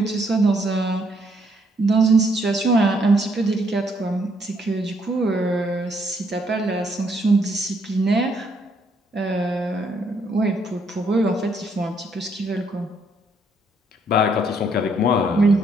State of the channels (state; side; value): normal; both; correlation 0.71